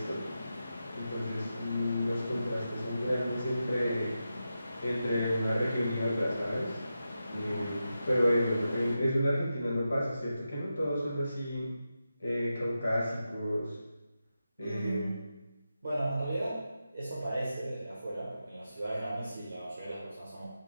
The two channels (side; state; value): both; inverted; correlation -0.90